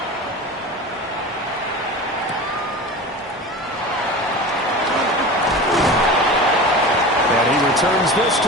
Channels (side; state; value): both; normal; correlation 0.32